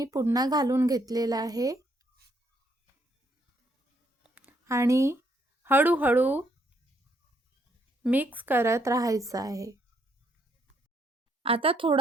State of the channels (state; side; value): normal; both; correlation 0.72